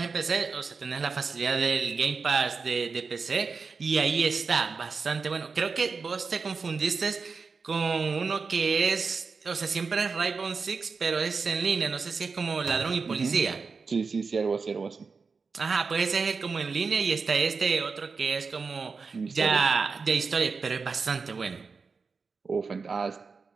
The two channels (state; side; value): quieter; left; 4.8 dB